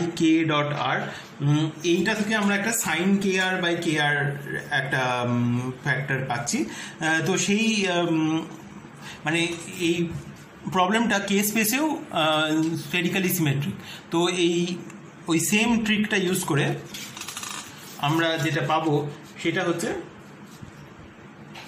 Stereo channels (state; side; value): identical; both; correlation 1.00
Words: k dot r, এইটা থেকে আমরা একটা sign k r by k আর একটা ফ্যাক্টর পাচ্ছি। তো সেই মানে এই প্রবলেমটা কে স্পেসেও স্ফেরিক্যালি সিমেট্রিক। তো ওই সেম ট্রিকটা ইউজ করে আমরা যেটা পাবো সেটা হচ্ছে